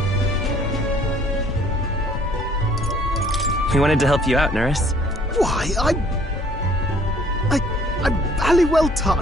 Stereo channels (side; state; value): both; normal; correlation 0.58